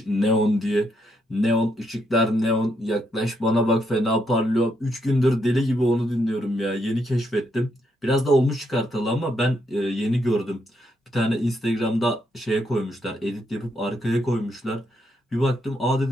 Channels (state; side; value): normal; both; correlation 0.77